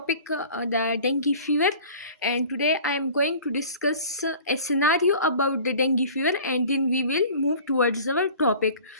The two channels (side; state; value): both; inverted; correlation -0.44